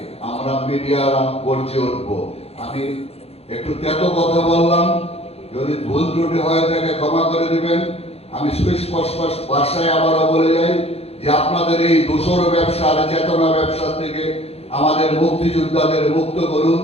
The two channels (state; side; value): late; right; 0.29 ms